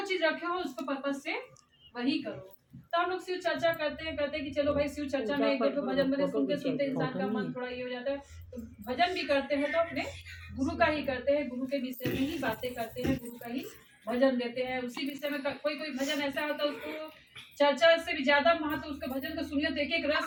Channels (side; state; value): both; identical; correlation 1.00